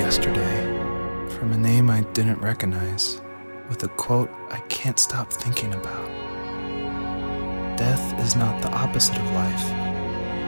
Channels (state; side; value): inverted; both; correlation -1.00